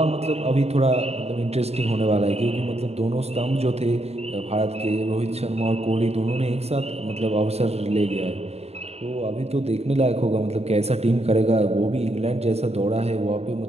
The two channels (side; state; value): left; late; 0.30 ms